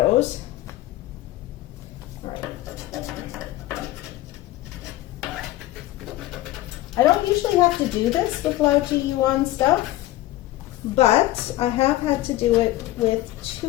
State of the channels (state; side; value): quieter; right; 16.2 dB